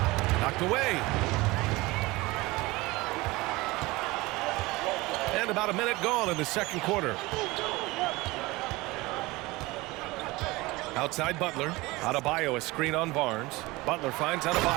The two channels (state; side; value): quieter; left; 21.6 dB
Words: Knocked away. And about a minute gone in the second quarter. Outside Butler. Adebayo, a screen on Barnes. Butler finds